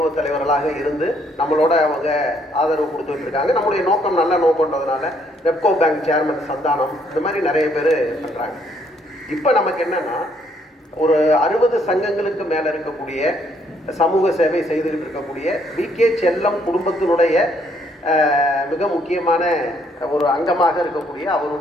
தலைவர்களாக இருந்து நம்மளோட அவங்க ஆதரவு கொடுத்துட்டு இருக்காங்க. நம்முடைய நோக்கம் நல்ல நோக்கம்ன்றதுனால ரெப்கோ பேங்க் சேர்மன் சந்தானம், இந்த மாதிரி நிறைய பேர் பண்ணுறாங்க. இப்போ நமக்கு என்னன்னா, ஒரு 60 சங்கங்களுக்கு மேலே இருக்கக்கூடிய சமூக சேவை செய்துக்கிட்டு இருக்கக்கூடிய வி.கே. செல்லம் குடும்பத்தினுடைய மிக முக்கியமான ஒரு அங்கமாக இருக்கக்கூடிய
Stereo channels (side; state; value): both; normal; correlation 0.68